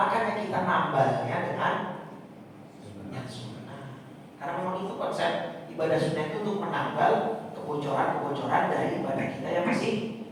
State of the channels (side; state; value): both; identical; correlation 1.00